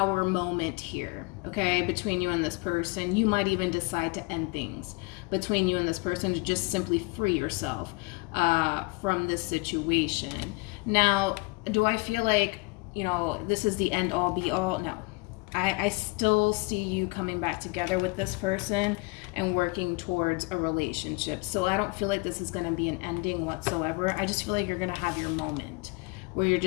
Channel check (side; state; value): right; quieter; 27.5 dB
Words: moment here, okay, between you and this person. You might even decide to end things between you and this person to just simply free yourself from this situation. Now, do I feel like, you know, this is the end all be all? No. I still see you coming back together with this person and working towards a relationship. So I don't feel like this is going to be an ending whatsoever. I just feel like you're going to have your moment where you're